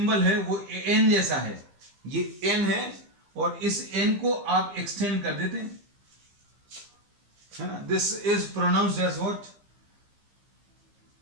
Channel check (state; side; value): late; left; 15 ms